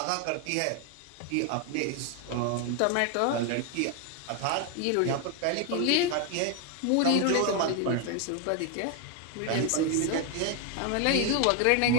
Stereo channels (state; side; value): different; both; correlation 0.01